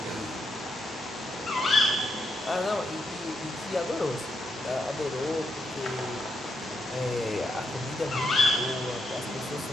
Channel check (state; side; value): normal; both; correlation 0.81